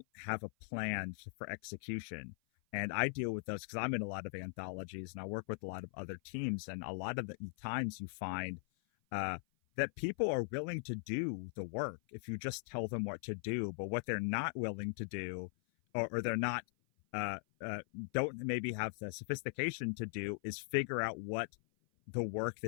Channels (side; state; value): right; silent; 51 dB below the other